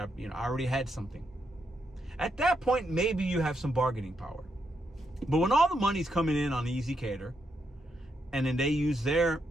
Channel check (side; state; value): both; normal; correlation 0.80